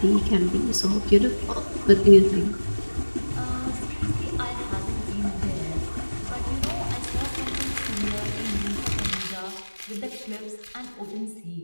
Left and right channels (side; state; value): both; inverted; correlation -1.00